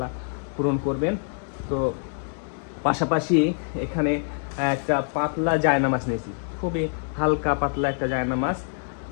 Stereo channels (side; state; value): right; silent; digital silence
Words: পূরণ করবেন। তো পাশাপাশি এখানে একটা পাতলা জায়নামাজ নিয়েছি, খুবই হালকা পাতলা একটা জায়নামাজ।